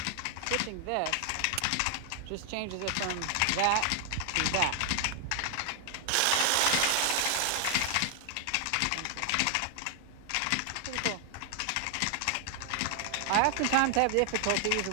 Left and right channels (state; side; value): different; both; correlation 0.00